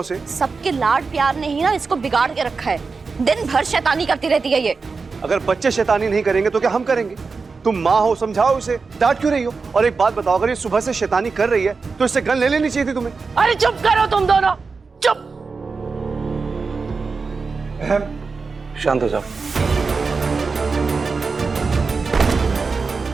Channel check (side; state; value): left; quieter; 4.6 dB